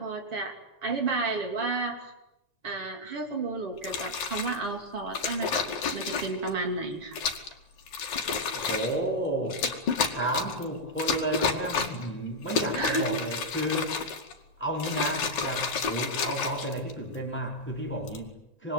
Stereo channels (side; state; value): right; late; 1.9 ms